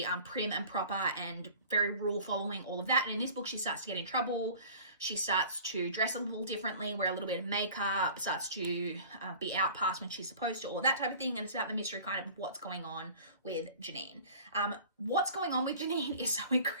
prim and proper and very rule following, all of that. And in this book she starts to get in trouble. She starts to dress a little differently, wear a little bit of makeup, starts to be out past when she's supposed to, all that type of thing. And it's about the mystery kind of what's going on with Janine. What's going on with Janine is so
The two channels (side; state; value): both; inverted; correlation -0.44